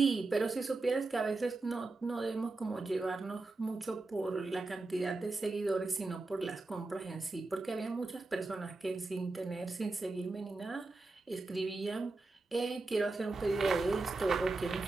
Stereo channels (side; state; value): left; quieter; 3.3 dB